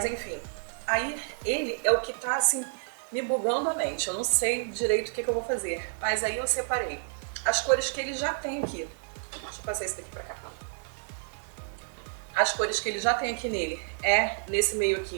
enfim, aí ele é o que tá assim me bugando a mente. Eu não sei direito o que eu vou fazer. Mas aí eu separei as cores que ele já tem aqui. Deixa eu passar esse daqui pra cá. As cores que ele já tem aqui nele é nesse meio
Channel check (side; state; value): left; silent; digital silence